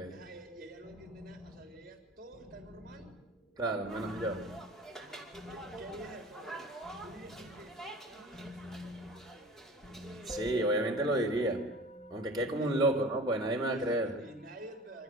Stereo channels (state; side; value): normal; both; correlation 0.40